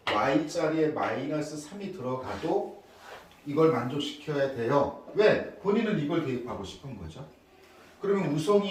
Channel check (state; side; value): identical; both; correlation 1.00